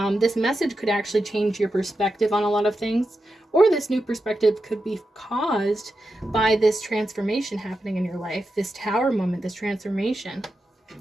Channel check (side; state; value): both; normal; correlation 0.89